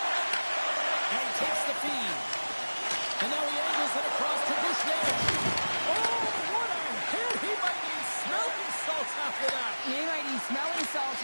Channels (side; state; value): both; inverted; correlation -1.00